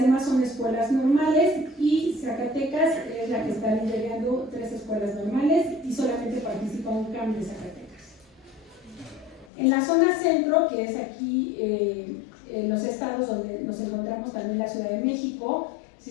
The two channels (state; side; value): drops out; right; at 9.5 s